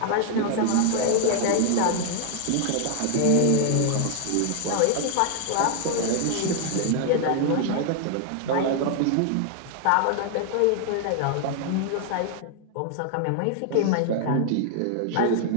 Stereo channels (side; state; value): both; different; correlation 0.00